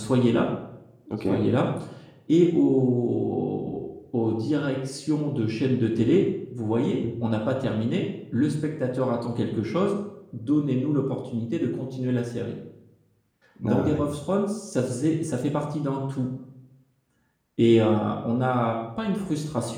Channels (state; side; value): identical; both; correlation 1.00